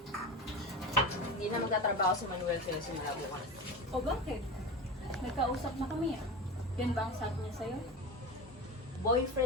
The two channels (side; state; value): both; normal; correlation 0.25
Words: Hindi na magtatrabaho si Manuel kaya simula bukas. O bakit? Nagkausap na kami ah. Yan ba ang sabi niya sa'yo?